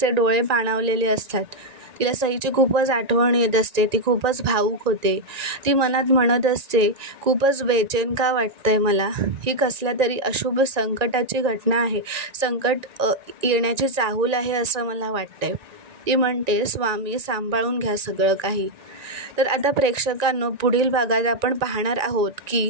डोळे पाणावलेले असतात, तिला सईची खूपच आठवण येत असते, ती खूपच भावूक होते. ती मनात म्हणत असते, खूपच बेचैन का वाटतंय मला, ही कसल्या तरी अशुभ संकटाची घटना आहे, संकट येण्याची चाहूल आहे असं मला वाटतंय. ती म्हणते, स्वामी सांभाळून घ्या सगळं काही. तर आता प्रेक्षकांनो, पुढील भागात आपण पाहणार आहोत की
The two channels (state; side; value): late; left; 1.9 ms